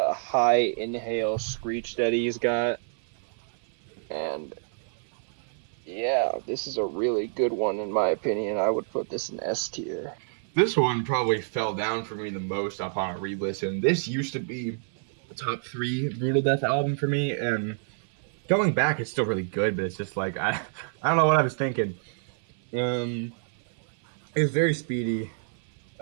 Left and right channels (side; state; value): left; silent; 56 dB below the other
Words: high inhale screech that he's got. And yeah, this is a really good one in my opinion. I would put this in S tier. This one probably fell down for me the most upon a re-listen. This used to be a top 3 Brutal Death album for me, and going back, it's still really good, but it's just like I don't know what I was thinking. It's very speedy.